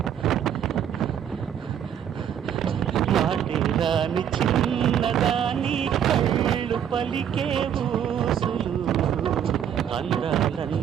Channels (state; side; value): quieter; left; 9.2 dB